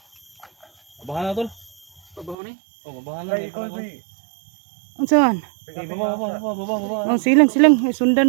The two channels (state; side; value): drops out; left; at 2.4 s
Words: Babahan na tol. Pabaho ni. Oh, babahan na. Ay, ikaw, Edwin. Unsaon? Sige, baba. Oh, silang.